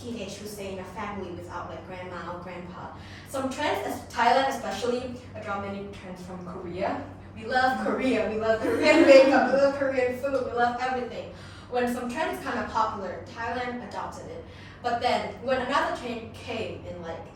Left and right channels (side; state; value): both; identical; correlation 1.00